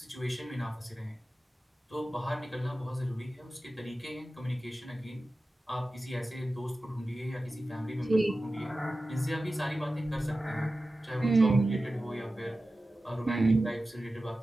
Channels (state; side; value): normal; both; correlation 0.94